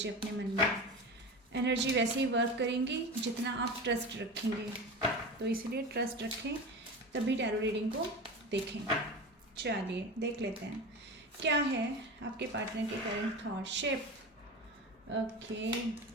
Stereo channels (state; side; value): normal; both; correlation 0.28